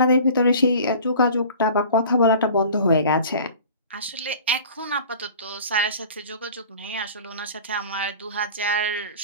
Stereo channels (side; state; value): both; inverted; correlation -0.43